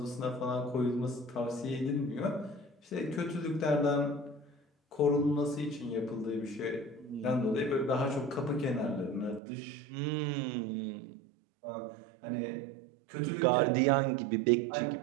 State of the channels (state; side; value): drops out; left; at 9.4 s